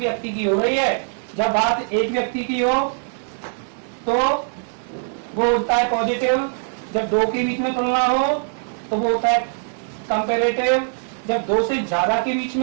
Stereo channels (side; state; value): left; silent; 64 dB below the other